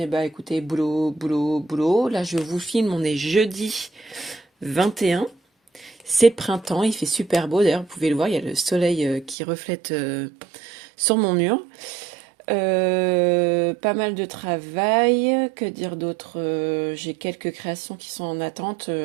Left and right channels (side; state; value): left; drops out; at 9.3 s